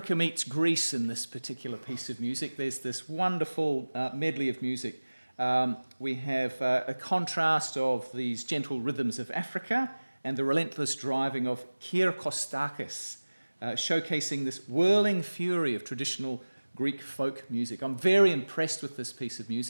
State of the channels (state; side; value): inverted; both; correlation -1.00